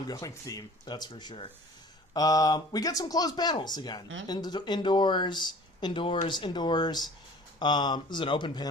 theme, that's for sure. We get some closed panels again. Indoors. This is an open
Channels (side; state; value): both; normal; correlation 0.47